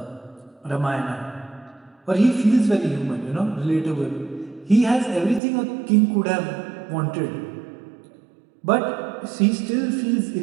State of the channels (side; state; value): left; drops out; at 5.4 s